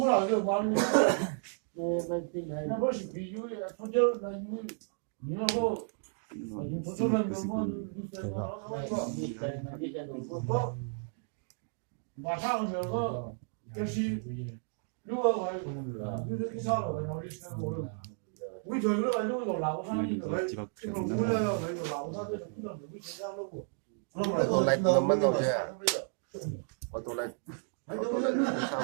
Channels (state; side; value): silent; left; 56 dB below the other